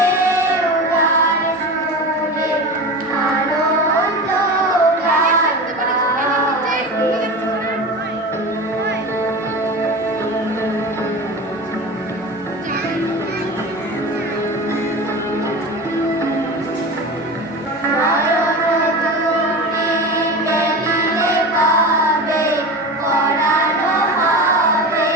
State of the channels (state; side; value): normal; both; correlation 0.29